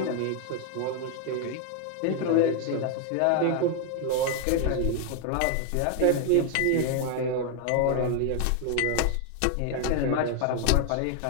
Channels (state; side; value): different; both; correlation 0.00